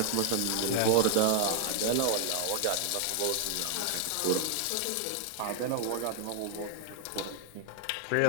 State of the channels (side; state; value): both; different; correlation 0.00